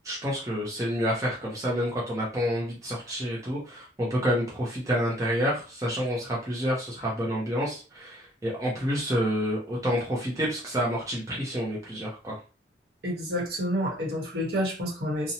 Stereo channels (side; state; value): both; normal; correlation 0.59